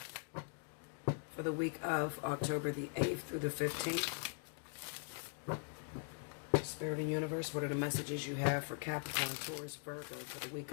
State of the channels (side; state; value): right; quieter; 39.9 dB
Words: for the week of October the 8th through the 15th. Spirit and Universe, what are the messages you have for Capricorn, Taurus, Virgo for the week